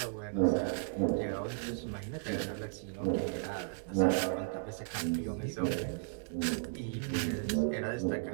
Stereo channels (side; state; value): left; silent; digital silence